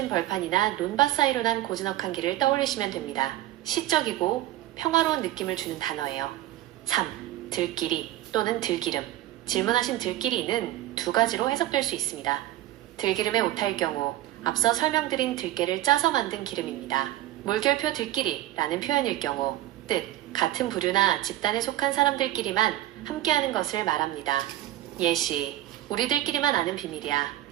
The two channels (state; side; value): quieter; left; 14.6 dB